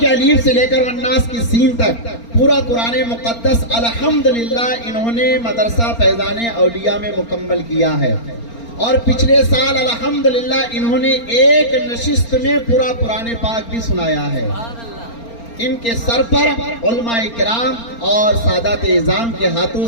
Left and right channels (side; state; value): right; late; 4.3 ms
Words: अलीफ से लेकर वन्नास की सीन तक पूरा कुरान मुकद्दस अल्हम्दुलिल्लाह इन्होंने मदरसा फैजान औलिया में मुकम्मल किया है, और पिछले साल अल्हम्दुलिल्लाह इन्होंने एक नशिस्त में पूरा कुरान पाक भी सुनाया है। इनके सर पर उलमाए किराम और सादात इज़ाम के हाथों